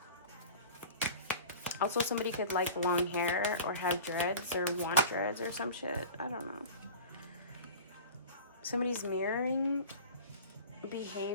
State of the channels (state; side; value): inverted; both; correlation -0.38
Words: Also, somebody could like long hair or have dreads or want dreads or some shit. I don't know. Somebody's mirroring